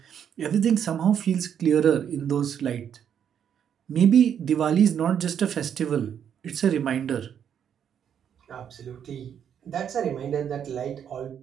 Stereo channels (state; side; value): quieter; left; 8.6 dB